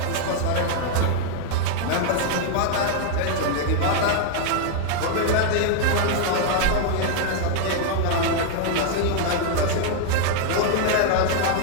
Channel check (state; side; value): different; both; correlation 0.00